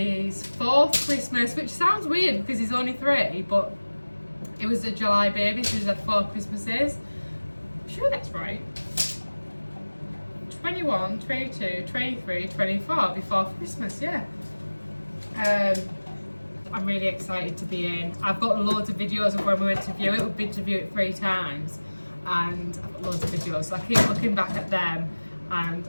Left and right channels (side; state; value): both; inverted; correlation -1.00